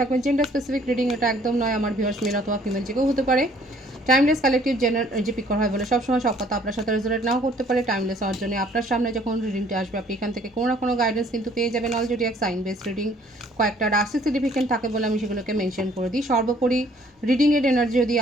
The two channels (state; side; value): normal; both; correlation 0.59